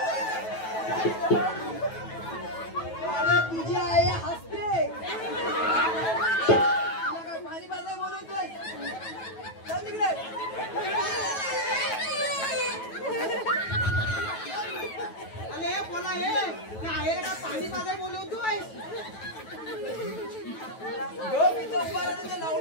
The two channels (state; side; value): late; right; 9.2 ms